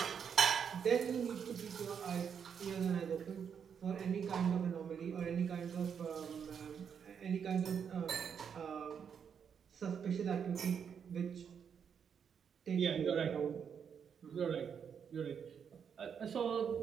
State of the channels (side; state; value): left; quieter; 7.3 dB